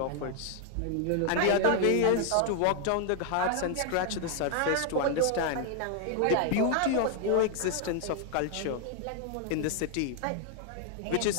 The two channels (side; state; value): both; different; correlation 0.00